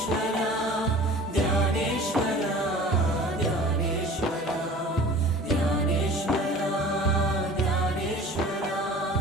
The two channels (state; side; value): normal; both; correlation 0.43